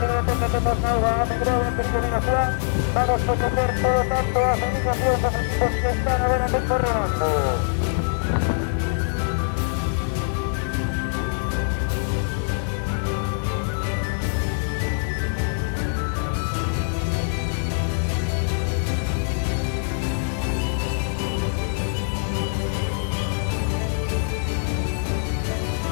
tenda que hemos dado a Megrove en peregrinación. Vamos a coger todo tanto a felicitación a los equipos que están ahora en el corredor.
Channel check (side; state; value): right; silent; digital silence